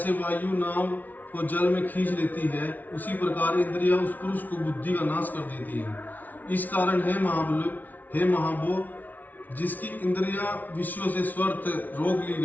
वायु नाव को जल में खींच लेती है उसी प्रकार इंद्रियां उस पुरुष को बुद्धि का नाश कर देती है। इस कारण हे महाबो, जिसकी इंद्रियां विषयों से स्वर्थ रोक ली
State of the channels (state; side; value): late; right; 0.079 ms